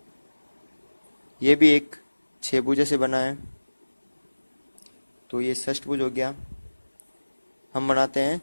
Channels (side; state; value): both; inverted; correlation -1.00